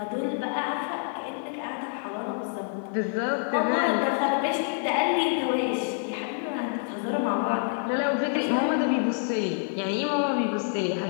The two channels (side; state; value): right; silent; 60 dB below the other